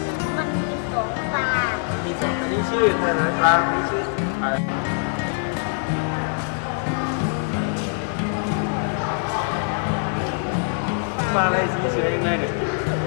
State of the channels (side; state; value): right; silent; 62 dB below the other